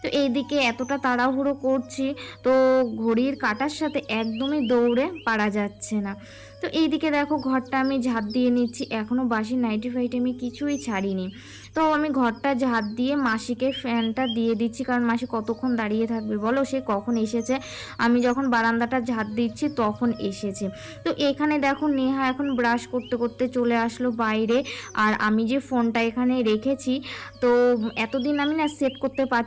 তো এইদিকে এতটা তাড়াহুড়ো করছি, তো ঘড়ির কাঁটার সাথে একদমই দৌড়ে পারা যাচ্ছে না। তো এইদিকে দেখো ঘরটা আমি ঝাড় দিয়ে নিচ্ছি, এখনও বাসি নাইটি ফাইটি আমি কিছুই ছাড়িনি। তো আমি ঘরটা ঝাড় দিয়ে মাসিকে ফ্যানটা দিয়ে দিচ্ছি, কারণ মাসি কতক্ষণ দাঁড়িয়ে থাকবে বলো, সে কখন এসেছে, আমি যখন বারান্দাটা ঝাড় দিচ্ছি তখন এসেছে। তো এখানে দেখো নেহা এখন ব্রাশ করতে করতে চলে আসলো বাইরে। আর আমি যে ফোনটা এখানে রেখেছি, তো এতদিন আমি না সেট করতে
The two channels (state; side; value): identical; both; correlation 1.00